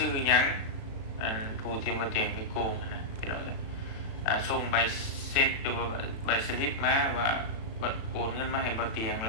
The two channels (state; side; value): late; right; 36 ms